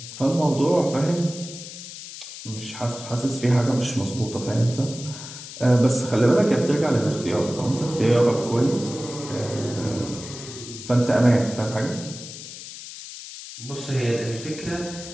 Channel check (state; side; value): noise; left; hiss, 12 dB below the sound